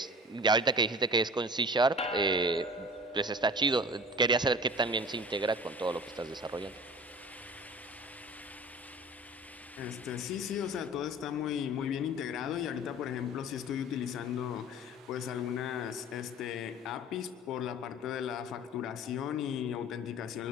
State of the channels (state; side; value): normal; both; correlation 0.41